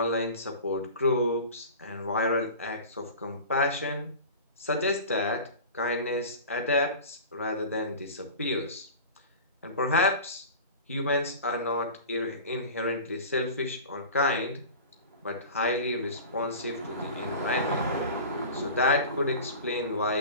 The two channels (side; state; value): both; inverted; correlation -0.35